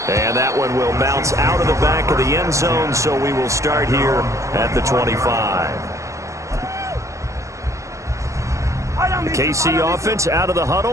And that one will bounce out of the back of the end zone, so we will start here at the 25. The KC offense out of the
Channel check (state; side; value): late; left; 0.15 ms